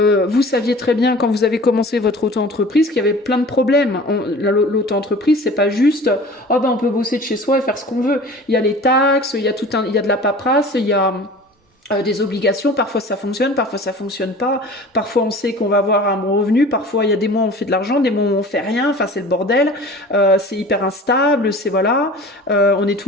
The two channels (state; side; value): normal; both; correlation 0.42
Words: saviez très bien quand vous avez commencé votre auto-entreprise qu'il y avait plein de problèmes. L'auto-entreprise, c'est pas juste oh ben on peut bosser de chez soi et faire ce qu'on veut. Il y a les taxes, il y a de la paperasse, il y a des obligations, parfois ça fonctionne pas, parfois on sait qu'on va avoir un bon revenu, parfois il y a des mois où on fait de l'argent, des mois où on fait rien, enfin c'est le bordel, c'est hyper instable, c'est voilà, on est